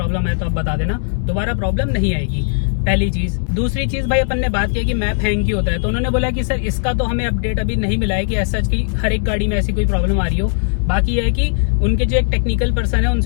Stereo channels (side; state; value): right; silent; digital silence